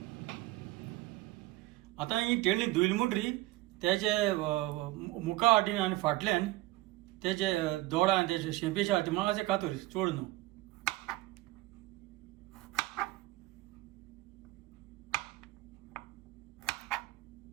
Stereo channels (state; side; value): quieter; left; 18.5 dB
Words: आतां ही टेंडली धुयली म्हणटरी तेजे मुखा वाटेन आनी फाटल्यान तेजे दोडा आनी तेजे शेंपेच्या हाती मातशें कातर चड न्हू.